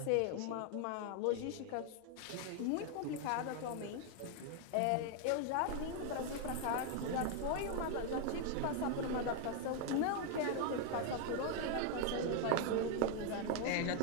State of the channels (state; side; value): different; both; correlation 0.00